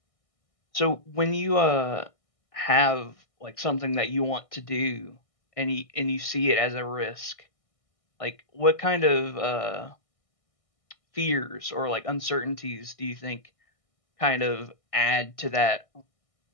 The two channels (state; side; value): late; right; 1.6 ms